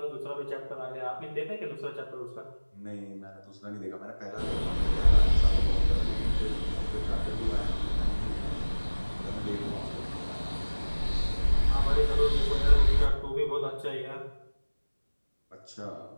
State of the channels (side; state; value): both; inverted; correlation -1.00